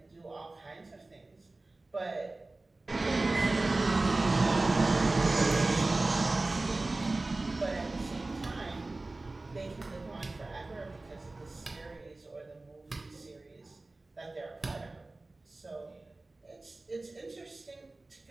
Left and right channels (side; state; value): left; quieter; 3.1 dB